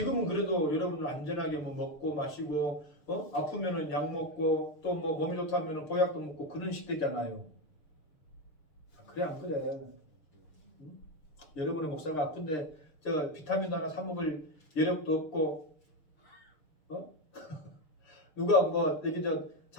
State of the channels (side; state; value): right; late; 6.6 ms